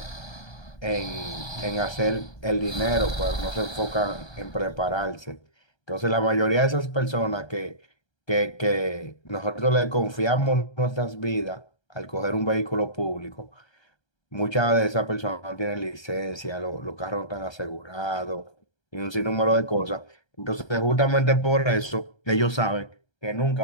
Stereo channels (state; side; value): late; right; 1.3 ms